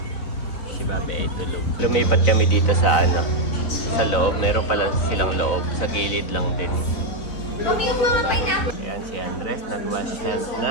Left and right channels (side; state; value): right; late; 4.0 ms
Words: Si Babe ay tulog. Lumipat kami dito sa sa loob. Meron pala silang loob. Sa gilid lang din. Ayan si Andres, nag-wash hands